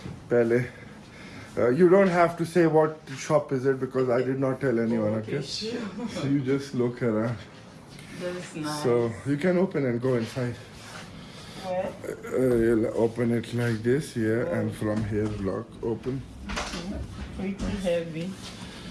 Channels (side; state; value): both; identical; correlation 1.00